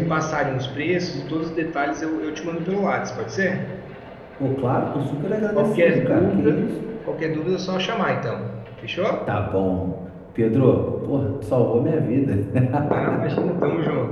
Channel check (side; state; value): both; identical; correlation 1.00